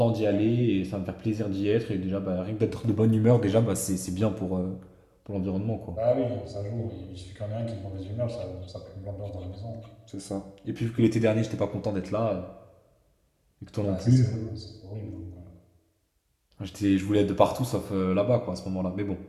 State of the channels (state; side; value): identical; both; correlation 1.00